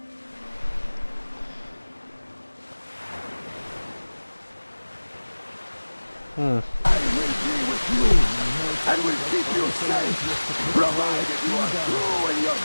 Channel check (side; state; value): both; inverted; correlation -1.00